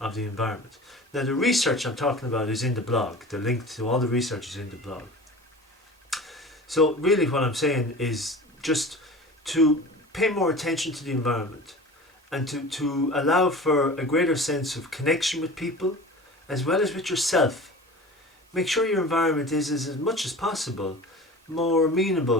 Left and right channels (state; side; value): normal; both; correlation 0.37